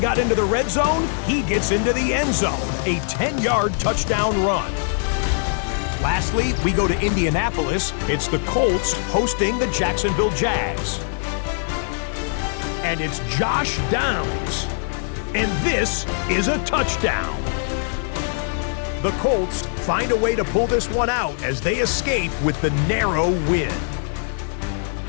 into the red zone, he gets into the end zone, a 10-yard touchdown run. Lastly, we go to Indianapolis. It's the Colts hosting the Jacksonville Jags. And it's Josh Downs. And this is a touchdown. The Colts find a way to pull this one out as they escape with the narrow win.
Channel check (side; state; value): right; silent; 64 dB below the other